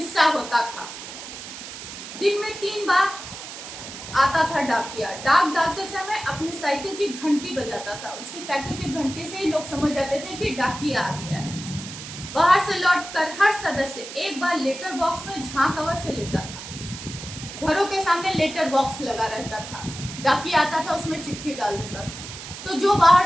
होता था। दिन में 3 बार आता था डाकिया। डाक डालते समय अपनी साइकिल की घंटी बजाता था। उसकी साइकिल की घंटी से ही लोग समझ जाते थे कि डाकिया आ गया है। बाहर से लौटकर हर सदस्य एक बार लेटर बॉक्स में झांक अवश्य लेता था। घरों के सामने लेटर बॉक्स लगा रहता था। डाकिया आता था, उसमें चिट्ठी डाल देता था। तो जो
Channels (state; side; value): noise; right; hiss, 11 dB below the sound